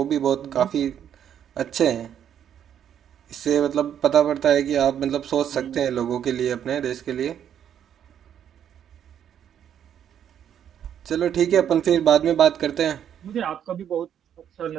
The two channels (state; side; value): quieter; left; 9.4 dB